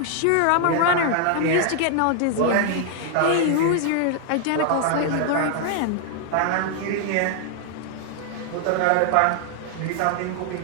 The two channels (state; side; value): different; both; correlation 0.00